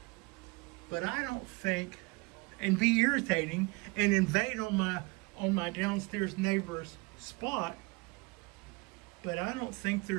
but I don't think, and be irritating and invade on my downstairs neighbor's spot, but I don't think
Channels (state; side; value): quieter; left; 26.1 dB